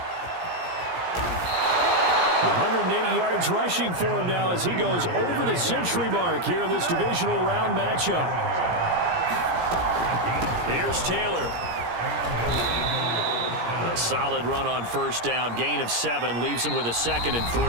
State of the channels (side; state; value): left; late; 17 ms